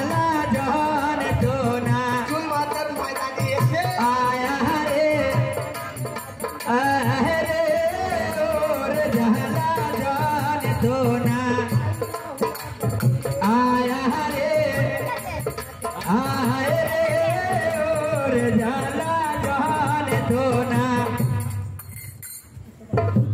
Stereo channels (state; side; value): identical; both; correlation 1.00